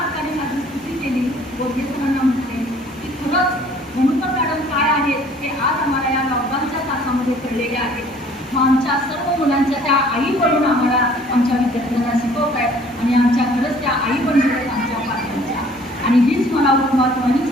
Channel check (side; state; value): both; normal; correlation 0.55